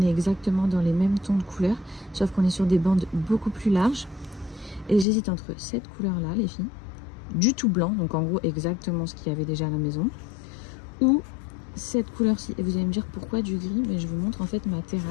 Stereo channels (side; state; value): right; drops out; at 5.1 s